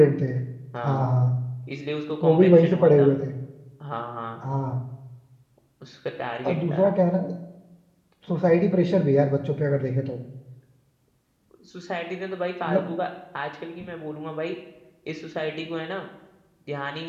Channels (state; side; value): identical; both; correlation 1.00